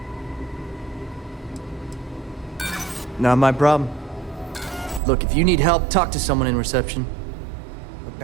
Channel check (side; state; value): left; drops out; at 5.0 s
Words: Not my problem. Look, if you need help, talk to someone in reception. Look,